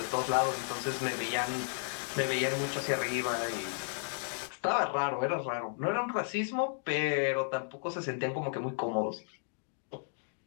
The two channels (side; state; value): right; silent; digital silence